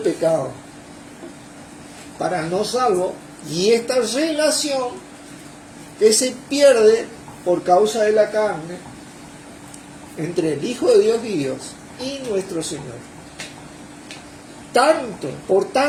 pecado, para no salvo, y esta relación que se pierde por causa de la carne entre el Hijo de Dios y Dios y nuestro Señor. Por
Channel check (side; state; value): both; identical; correlation 1.00